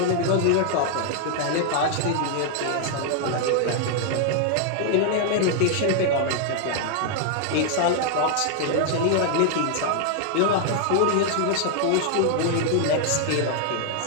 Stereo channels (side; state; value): both; different; correlation 0.00